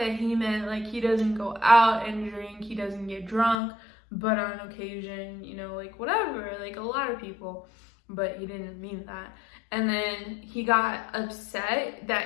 he meant like he doesn't go out and drink, he doesn't get drunk, but on occasion, you know, like whatever, like a lot of people. But he didn't mean that. And then he got upset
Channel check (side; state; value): right; drops out; at 3.6 s